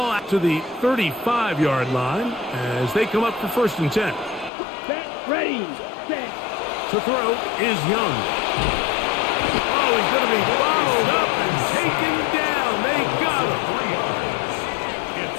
out to the 35-yard line as they come up for 1st and 10. Set, ready, set. To throw is Young. Oh, he's going to be followed up and taken down. They got him.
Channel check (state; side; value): drops out; right; at 4.5 s